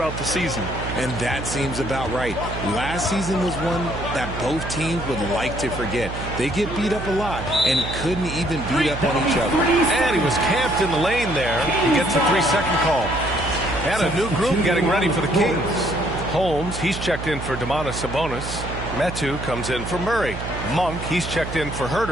the season. And that seems about right. Last season was one that both teams would like to forget. They get beat up a lot and couldn't even beat up on each other. And he was camped in the lane there. He gets a 3-second call. And a new group getting ready for the Kings. Holmes, he's checked in for Domantas Sabonis. Metu comes in for Murray. Monk, he's checked in for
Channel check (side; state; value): right; noise; hum, 7 dB below the sound